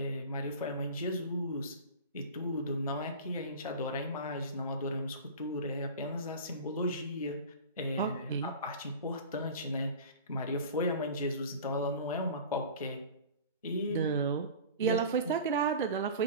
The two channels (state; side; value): inverted; both; correlation -0.35